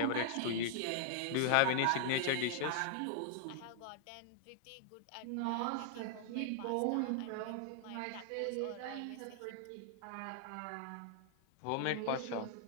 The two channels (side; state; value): both; different; correlation -0.01